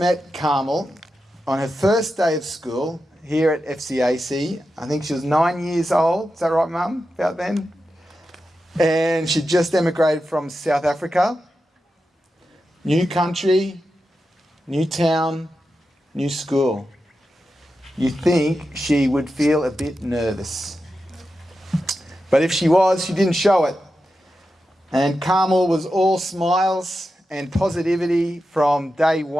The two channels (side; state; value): both; normal; correlation 0.90